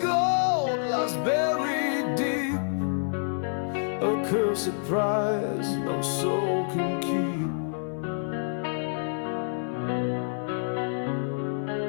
lies buried deep, a cursed prize no soul can keep.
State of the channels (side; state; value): right; silent; 60 dB below the other